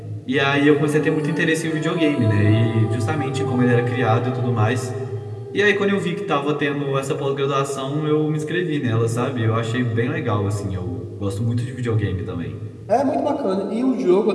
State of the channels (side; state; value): both; identical; correlation 1.00